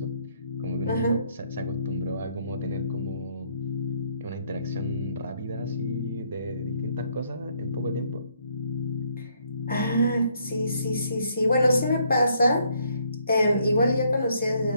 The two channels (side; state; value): both; inverted; correlation -0.69